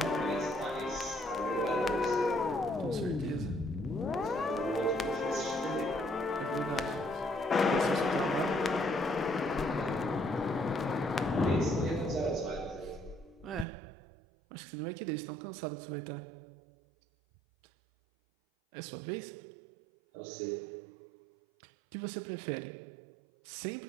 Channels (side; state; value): left; drops out; at 13.7 s